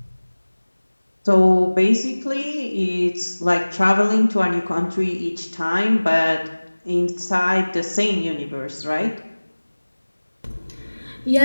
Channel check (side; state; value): both; inverted; correlation -1.00